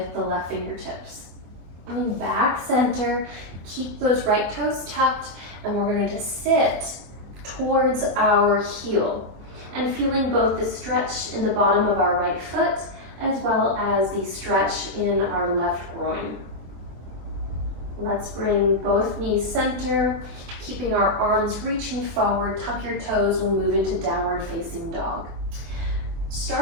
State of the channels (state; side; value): late; left; 24 ms